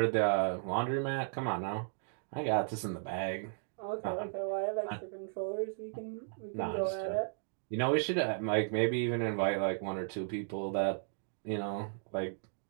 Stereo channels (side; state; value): left; silent; digital silence